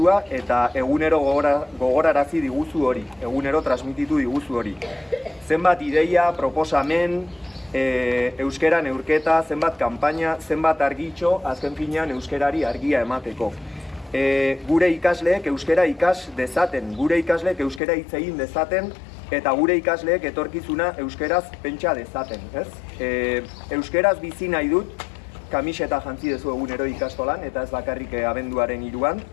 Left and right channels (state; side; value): drops out; right; at 17.8 s